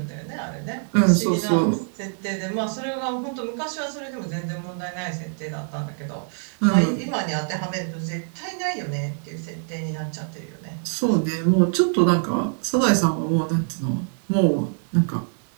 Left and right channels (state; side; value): silent; left; 62 dB below the other